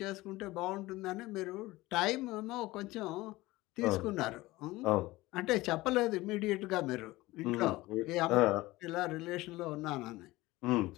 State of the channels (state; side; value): quieter; right; 19.3 dB